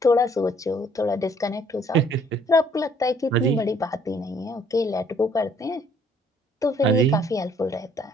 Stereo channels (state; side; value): normal; both; correlation 0.62